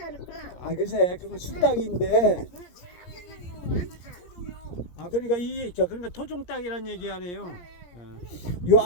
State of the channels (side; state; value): right; late; 17 ms